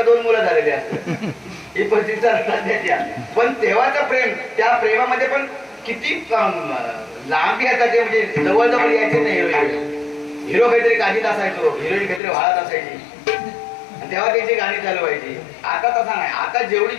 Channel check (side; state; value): right; drops out; at 12.2 s